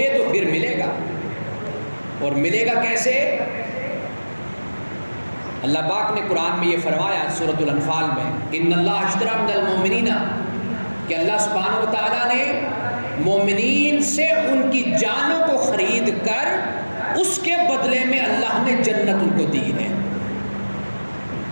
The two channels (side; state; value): both; inverted; correlation -1.00